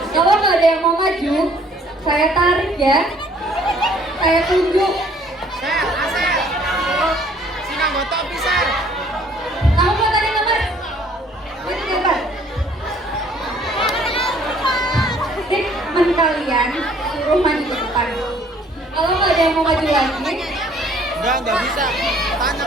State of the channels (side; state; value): both; normal; correlation 0.59